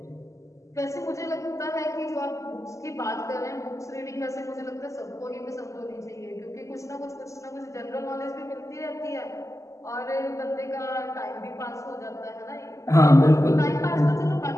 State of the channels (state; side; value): late; right; 0.15 ms